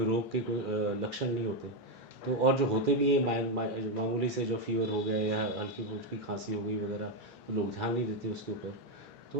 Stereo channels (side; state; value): both; normal; correlation 0.05